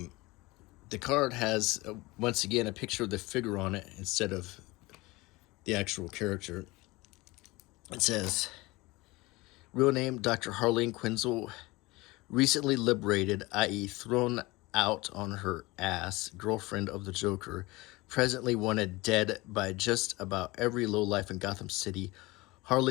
card has, once again, a picture of the figure on it instead of the actual character. It says, real name, Dr. Harleen Quinzel, recently liberated, i.e. thrown out on her ass, girlfriend of the Joker, presently wanted dead by just about every lowlife in Gotham City.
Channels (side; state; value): right; quieter; 22.0 dB